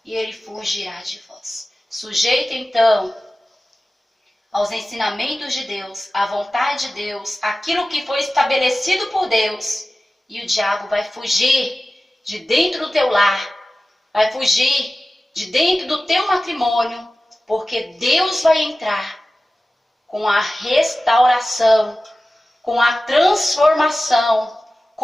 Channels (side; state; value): both; normal; correlation 0.96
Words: e ele fugirá de vós. Sujeita, então, aos ensinamentos de Deus, à vontade de Deus, aquilo que foi estabelecido por Deus, e o diabo vai fugir de dentro do teu lar, vai fugir de dentro do teu matrimônio, porque Deus vai entrar com a restauração, com a transformação,